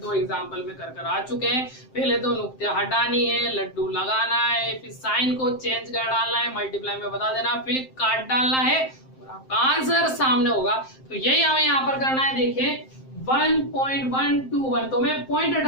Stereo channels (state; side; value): late; right; 7.7 ms